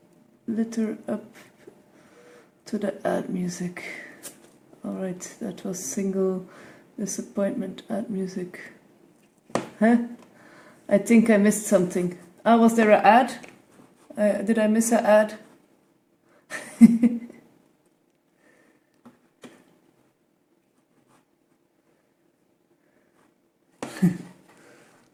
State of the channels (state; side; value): identical; both; correlation 1.00